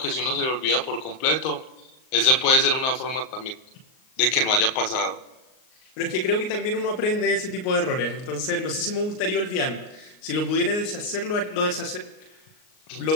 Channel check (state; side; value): late; right; 38 ms